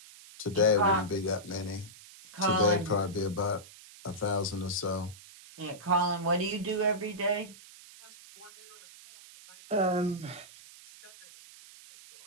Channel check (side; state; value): right; noise; hiss, 20 dB below the sound